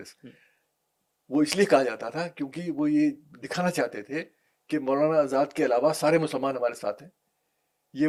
وہ اس لیے کہا جاتا تھا کیونکہ وہ یہ دکھانا چاہتے تھے کہ مولانا آزاد کے علاوہ سارے مسلمان ہمارے ساتھ ہیں. یہ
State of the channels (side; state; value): both; identical; correlation 1.00